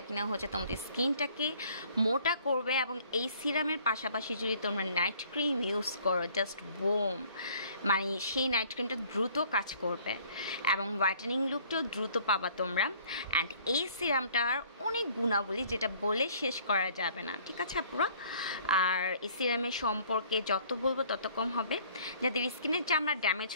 কিনা হচ্ছে তোমাদের স্কিনটাকে মোটা করবে। এবং এই সিরামের পাশাপাশি যদি তোমরা নাইট ক্রিম ইউজ করো, জাস্ট বোম, মানে সেই নাইট ক্রিমটা দ্রুত কাজ করবে এবং হোয়াইটেনিং লুকটাও দ্রুত পাবা তোমরা। অ্যান্ড এই সিরামটার অনেক গুণাবলী যেটা বলে শেষ করা যাবে না, ঠিক আছে আপুরা। আর এই সিরামের সম্পর্কে যত বলবো তত কম হবে। যাদের স্কিনের চামড়া ড্যামেজ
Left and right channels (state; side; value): inverted; both; correlation -0.57